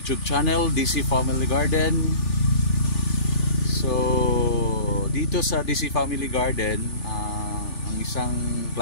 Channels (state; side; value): late; right; 3.4 ms